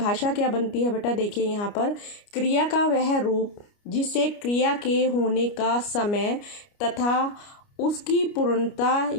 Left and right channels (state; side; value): late; right; 29 ms